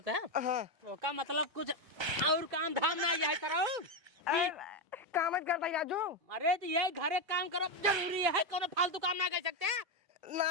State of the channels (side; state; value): left; late; 1.3 ms